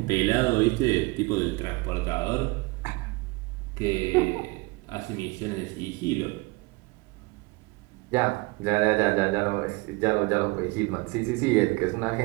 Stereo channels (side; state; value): left; quieter; 24.8 dB